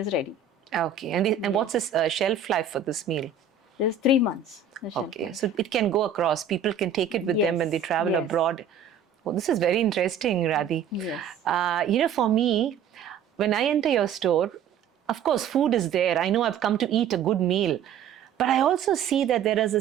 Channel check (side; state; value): left; quieter; 6.9 dB